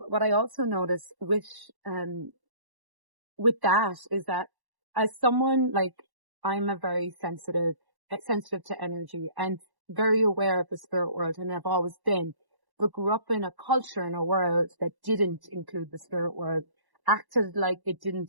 I also notice with that is that as someone like I'm a very sensitive to energy and very aware of the spirit world, and I've always been, but grew up in a culture in a world that didn't include the spirit world, acted like it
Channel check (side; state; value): left; late; 1.1 ms